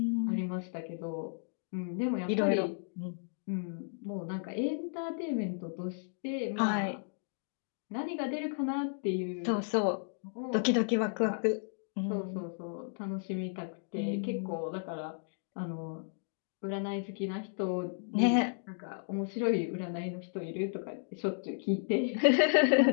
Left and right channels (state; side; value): silent; right; digital silence